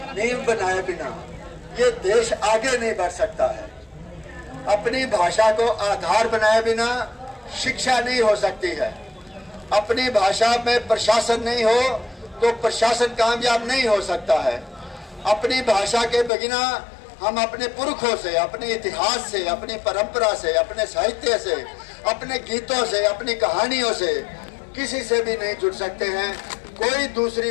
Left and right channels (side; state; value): right; drops out; at 16.3 s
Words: नींव बनाए बिना ये देश आगे नहीं बढ़ सकता है। अपनी भाषा को आधार बनाए बिना शिक्षा नहीं हो सकती है। अपनी भाषा में प्रशासन नहीं हो तो प्रशासन कामयाब नहीं हो सकता है। अपनी भाषा के बिना हम अपने पुरखों से, अपने इतिहास से, अपनी परंपरा से, अपने साहित्य से, अपने गीतों से, अपनी कहानियों से किसी से भी नहीं जुड़ सकते हैं। कोई